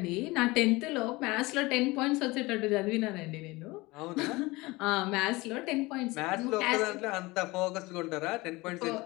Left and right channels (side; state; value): right; quieter; 22.1 dB